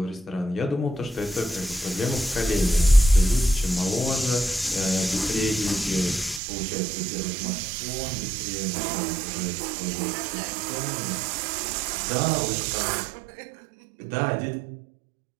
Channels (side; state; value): left; drops out; at 6.4 s